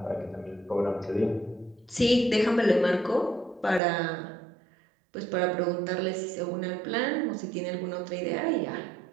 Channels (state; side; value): drops out; left; at 3.8 s